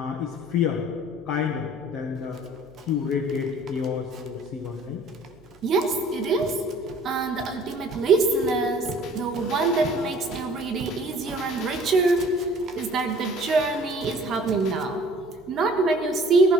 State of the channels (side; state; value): right; noise; hum, 27 dB below the sound